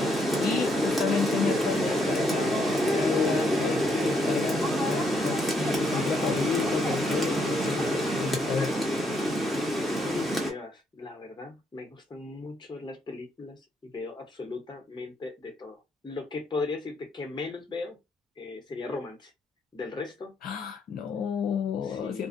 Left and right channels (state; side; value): normal; both; correlation 0.74